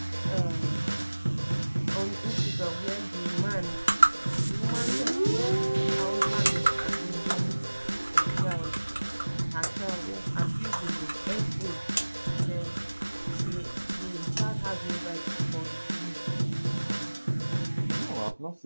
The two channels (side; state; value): both; inverted; correlation -1.00